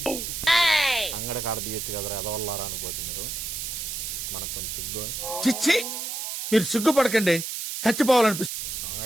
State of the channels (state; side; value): noise; right; hiss, 5 dB below the sound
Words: అంగడి కాడ తీయొచ్చు కదరా, ఎదవల్లారా అనుకోవచ్చు మీరు. మనకు కొంచెం సిగ్గు. చిచ్చి, మీరు సిగ్గుపడకండి, చచ్చిపోవాలనిపిస్తుంది.